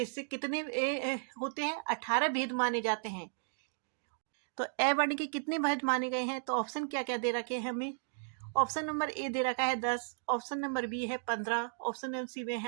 से कितने होते हैं? 18 भेद माने जाते हैं। तो ए वर्ण के कितने भेद माने गए हैं? तो ऑप्शन क्या क्या दे रखे हैं हमें? ऑप्शन नंबर ए दे रखा है 10, ऑप्शन नंबर बी है 15, ऑप्शन नंबर सी में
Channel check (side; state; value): left; silent; digital silence